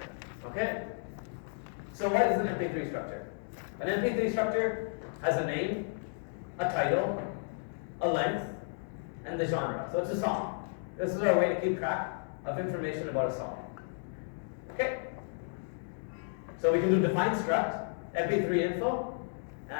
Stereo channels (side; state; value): right; silent; digital silence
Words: Okay. So what is an MP3 structure? An MP3 structure has a name, a title, a length, and the genre. So it's a song. This is our way to keep track of information about a song. Okay? So we can do define struct, MP3 info,